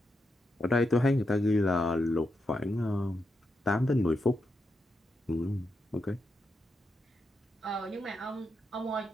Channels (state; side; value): normal; both; correlation 0.84